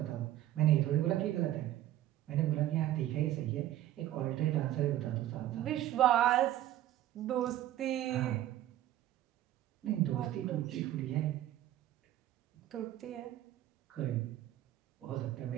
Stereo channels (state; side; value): quieter; left; 13.4 dB